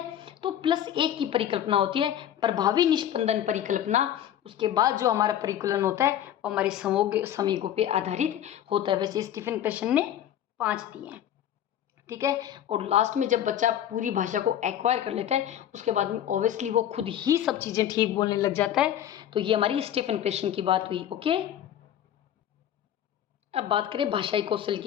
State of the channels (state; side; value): quieter; right; 10.8 dB